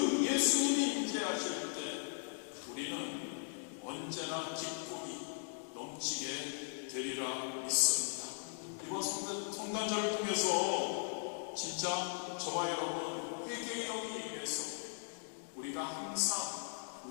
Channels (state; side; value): silent; right; digital silence